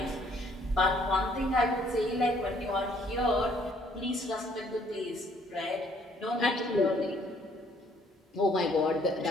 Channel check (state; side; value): normal; both; correlation 0.63